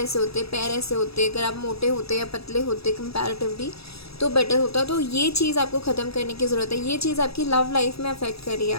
होते, पैर ऐसे होते, अगर आप मोटे होते या पतले होते कंपैरेटिवली, तो बेटर होता। तो ये चीज़ आपको ख़त्म करने की ज़रूरत है। ये चीज़ आपकी लव लाइफ में अफेक्ट कर रही है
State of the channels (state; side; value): late; right; 0.77 ms